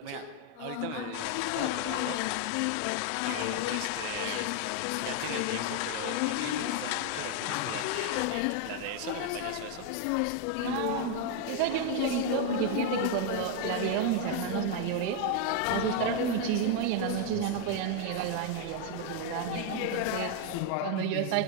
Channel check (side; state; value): both; different; correlation 0.01